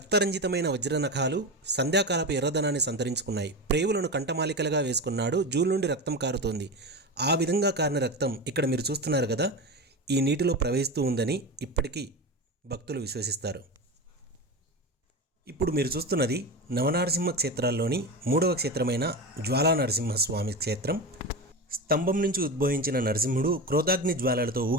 వజ్రనఖాలు సంధ్యాకాలపు ఎర్రదనాన్ని సంతరించుకున్నాయి. ప్రేవులను కంఠమాలికలుగా వేసుకున్నాడు. జూలు నుండి రక్తం కారుతోంది. ఆ విధంగా కారిన రక్తం ఇక్కడ మీరు చూస్తున్నారు కదా, ఈ నీటిలో ప్రవహిస్తూ ఉందని ఇప్పటికీ భక్తులు విశ్వసిస్తారు. ఇప్పుడు మీరు చూస్తున్నది నవనరసింహ క్షేత్రాల్లోని 3వ క్షేత్రమైన జ్వాలా నరసింహస్వామి క్షేత్రం. స్తంభం నుంచి ఉద్భవించిన నరసింహుడు క్రోధాగ్ని జ్వాలలతో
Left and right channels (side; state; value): both; normal; correlation 0.23